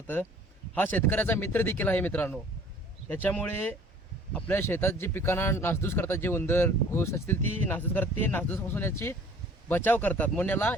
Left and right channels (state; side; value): normal; both; correlation 0.52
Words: हा शेतकऱ्याचा मित्र देखील आहे मित्रांनो. त्याच्यामुळे आपल्या शेतात जे पिकांना नासधूस करतात, जे उंदर घोस असतील ती नासधूस करतात, ते नासधूसपासून याची बचाव करतात म्हणून याला